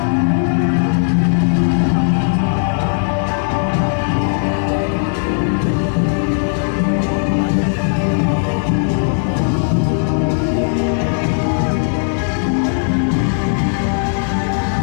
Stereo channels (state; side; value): silent; right; digital silence